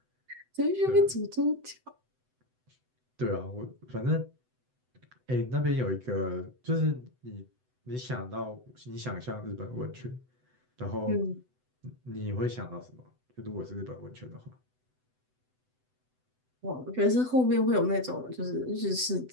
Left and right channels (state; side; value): late; left; 7.9 ms